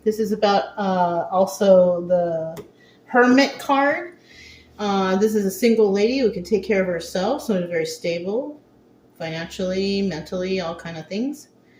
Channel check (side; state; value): both; identical; correlation 1.00